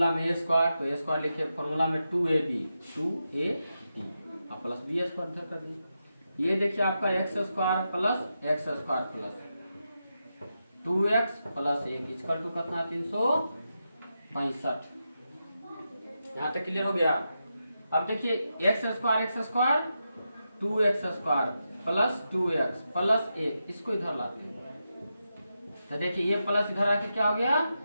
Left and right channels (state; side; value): inverted; both; correlation -0.88